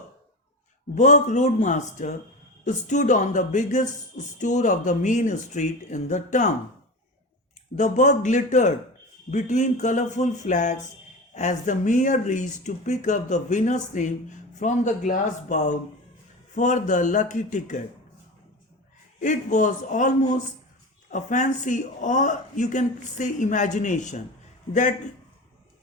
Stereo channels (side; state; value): both; normal; correlation 0.28